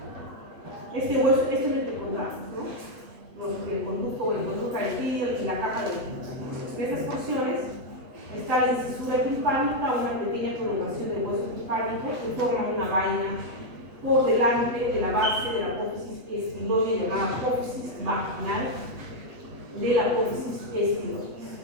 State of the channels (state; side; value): late; left; 8.2 ms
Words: este hueso, este es el que encontramos, ¿no? El conducto carotídeo y la capa de líquido. En estas porciones está la incisura timpánica, una pequeña prolongación del hueso timpánico que forma una vaina por delante de la base de la apófisis espiloide llamada apófisis vaginal de la apófisis espiloide.